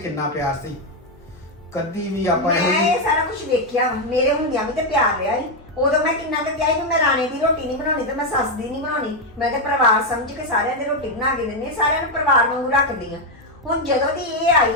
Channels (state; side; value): normal; both; correlation 0.04